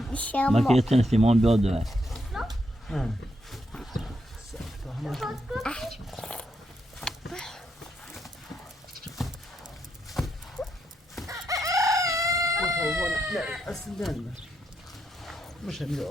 بیشه ما که یه سیمان بیاد دوه اصلا مش همین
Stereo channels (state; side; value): normal; both; correlation 0.80